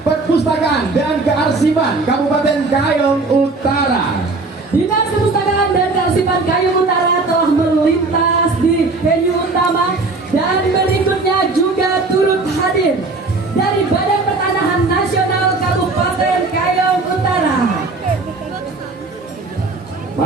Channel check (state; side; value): quieter; left; 3.6 dB